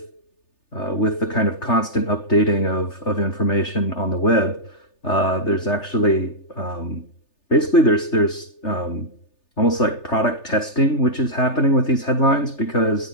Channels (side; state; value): right; late; 3.3 ms